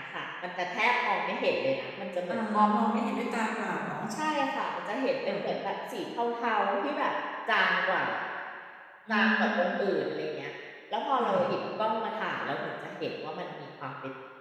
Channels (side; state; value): both; identical; correlation 1.00